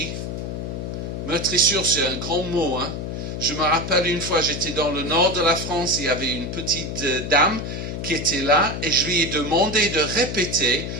Meurtrissure, c'est un grand mot. Hein? Je me rappelle une fois, j'étais dans le nord de la France, il y avait une petite dame qui était là et je lui ai demandé de répéter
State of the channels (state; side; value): noise; left; hum, 5 dB below the sound